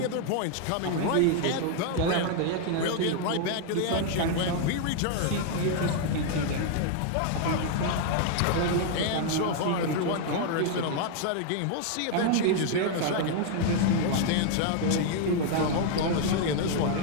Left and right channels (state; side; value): different; both; correlation 0.00